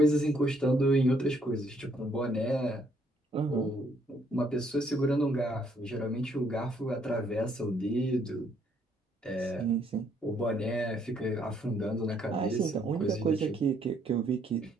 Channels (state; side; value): normal; both; correlation 0.69